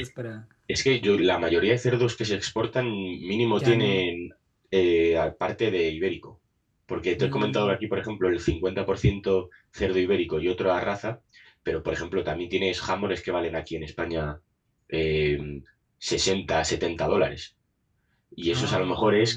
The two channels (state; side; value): identical; both; correlation 1.00